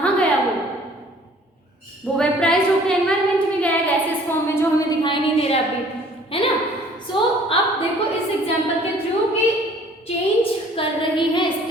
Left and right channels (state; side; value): normal; both; correlation 0.54